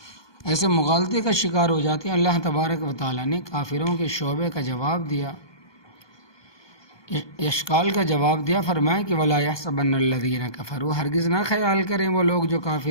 ایسے مغالطے کا شکار ہو جاتے ہیں۔ اللہ تبارک و تعالیٰ نے کافروں کے شعبے کا جواب دیا، اشکال کا جواب دیا، فرمایا کہ وَلَا يَحْسَبَنَّ الَّذِينَ كَفَرُوا، ہرگز نہ خیال کریں وہ لوگ جو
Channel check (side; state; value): right; late; 1.2 ms